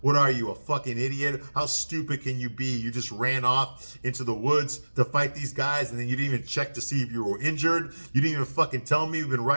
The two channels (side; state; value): both; inverted; correlation -1.00